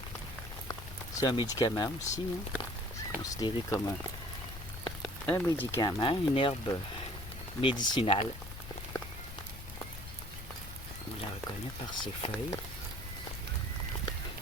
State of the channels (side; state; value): left; noise; rumble, 11 dB below the sound